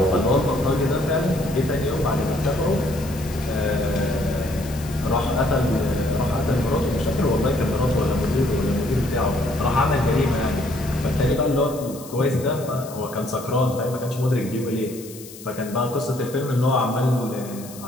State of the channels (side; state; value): left; noise; hiss, 17 dB below the sound